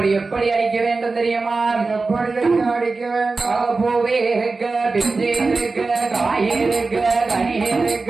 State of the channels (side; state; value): left; quieter; 3.9 dB